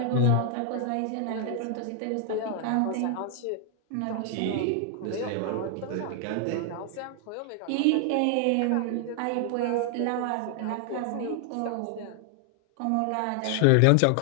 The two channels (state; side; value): different; both; correlation 0.00